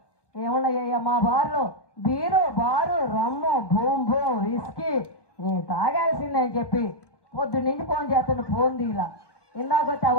ఏమున్నాయ్యా? మా బార్లో బీరు బారు రమ్ము బూమ్ బూమ్ విస్కీ నేను తాగాల్సిందే అని చెప్పి పొద్దున్న నుంచి ఫోన్ చేస్తాను. ఫోన్ తీలా ఇందాక వచ్చి ఆ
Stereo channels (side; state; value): right; late; 1.2 ms